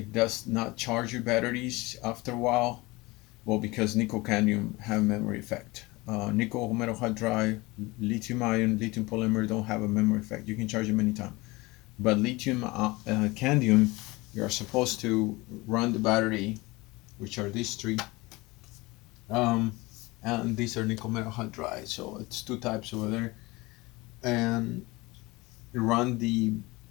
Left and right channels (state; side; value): quieter; right; 22.6 dB